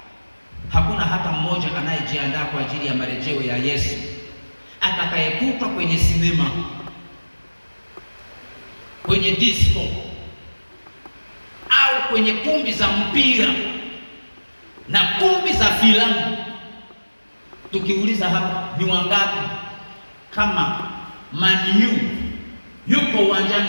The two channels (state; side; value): inverted; both; correlation -1.00